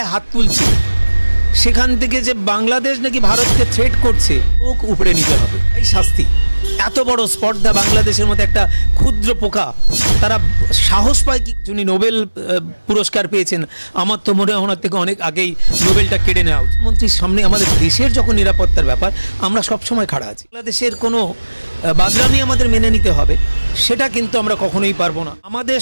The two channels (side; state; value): both; inverted; correlation -1.00